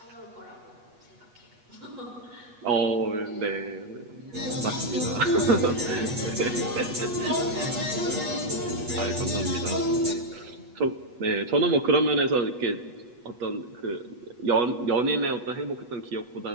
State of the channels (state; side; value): late; left; 8.2 ms